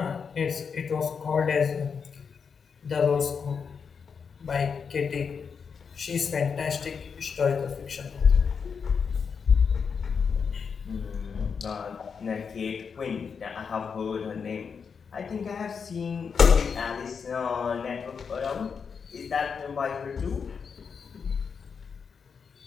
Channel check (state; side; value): quieter; right; 6.1 dB